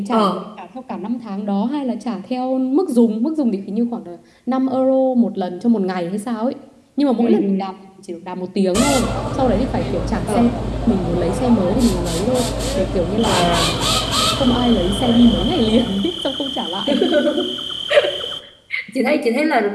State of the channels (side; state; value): both; identical; correlation 1.00